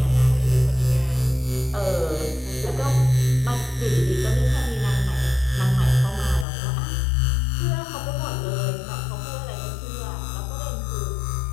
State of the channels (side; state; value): right; drops out; at 6.5 s